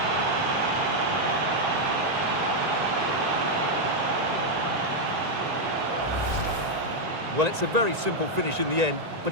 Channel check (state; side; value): late; left; 1.9 ms